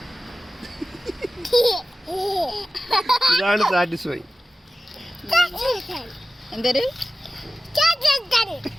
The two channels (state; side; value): normal; both; correlation 0.94